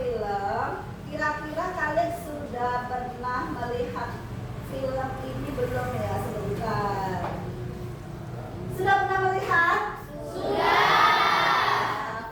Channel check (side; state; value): both; identical; correlation 1.00